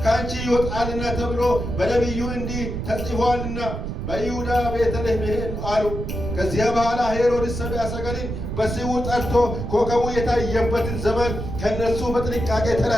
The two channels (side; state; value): right; noise; rumble, 5 dB below the sound